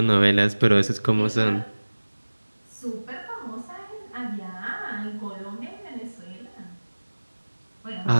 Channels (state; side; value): inverted; both; correlation -1.00